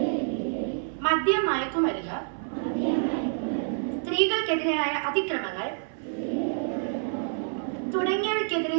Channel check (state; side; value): silent; left; 58 dB below the other